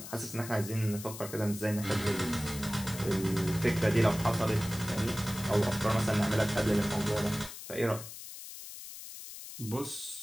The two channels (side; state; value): left; noise; hiss, 12 dB below the sound